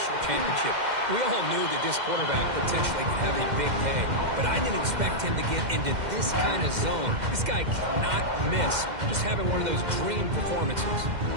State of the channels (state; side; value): late; left; 2.1 ms